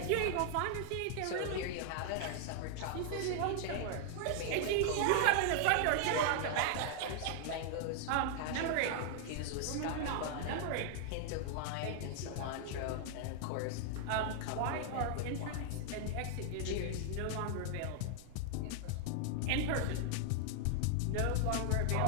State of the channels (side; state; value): both; different; correlation 0.00